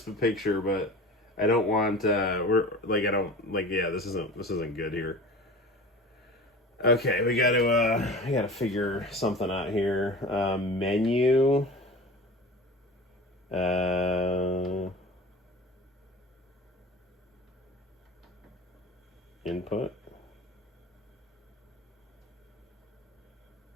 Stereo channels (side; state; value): both; normal; correlation 0.37